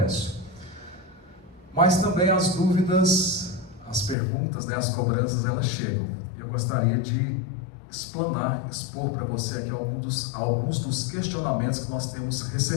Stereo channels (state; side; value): drops out; right; at 4.2 s